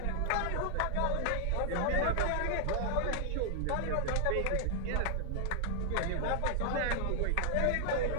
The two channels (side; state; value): both; different; correlation 0.00